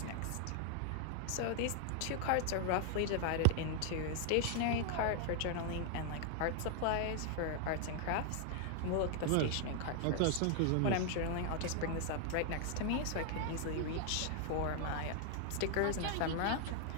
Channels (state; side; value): different; both; correlation 0.00